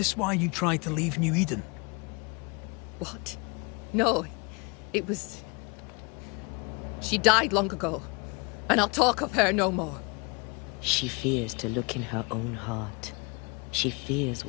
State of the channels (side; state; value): right; quieter; 30.6 dB